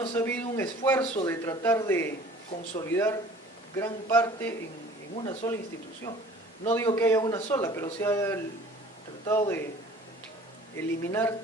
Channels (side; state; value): both; normal; correlation 0.48